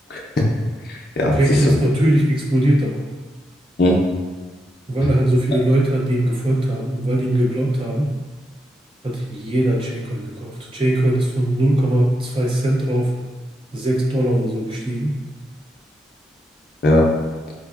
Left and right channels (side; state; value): both; normal; correlation 0.85